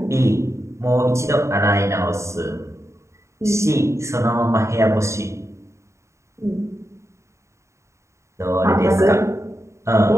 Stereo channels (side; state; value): left; late; 0.14 ms